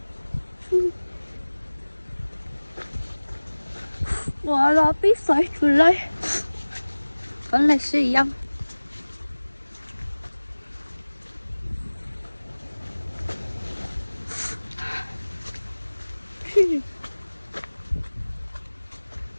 Gọi là biết xoay trở lại vẫn là sử dụng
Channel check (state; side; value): inverted; both; correlation -1.00